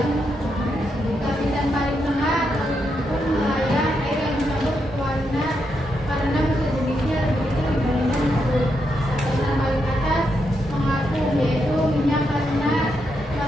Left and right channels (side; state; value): both; normal; correlation 0.82